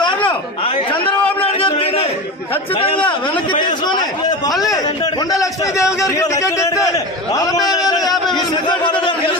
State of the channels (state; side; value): normal; both; correlation 0.25